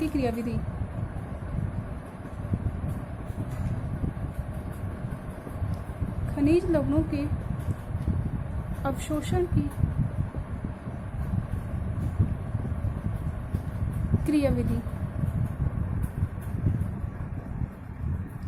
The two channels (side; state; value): both; identical; correlation 1.00